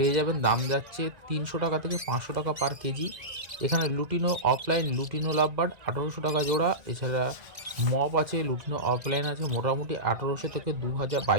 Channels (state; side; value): late; left; 2.0 ms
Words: যাবেন। দাম যাচ্ছে 300 টাকা থেকে 500 টাকা পার কেজি। এখানে লুটিনো অফলাইন, লুটিনো লাভবার্ড 1800 টাকা জোড়া। এছাড়া মপ আছে, লুটিনো অফলাইন আছে, মোটামুটি 1800 থেকে